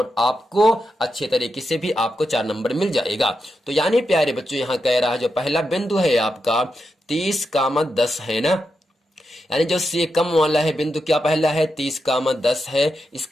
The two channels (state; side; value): normal; both; correlation 0.87